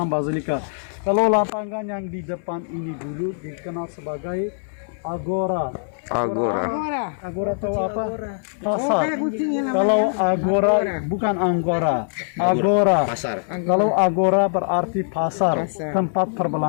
basilika. Kalau lapangan yang di depan ini dulu dikenal sebagai agora. Agora tahu apa? Pasar. Kalau agora bukan anggora. Agora. Pasar. Kalau agora berarti pasar, tempat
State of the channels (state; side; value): silent; right; digital silence